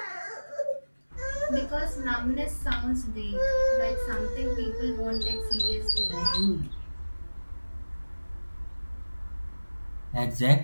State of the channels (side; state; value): both; inverted; correlation -1.00